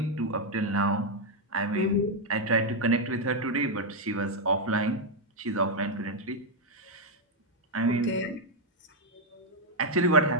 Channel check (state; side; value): normal; both; correlation 0.00